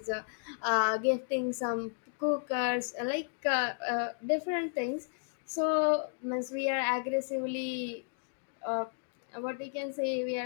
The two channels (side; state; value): right; silent; digital silence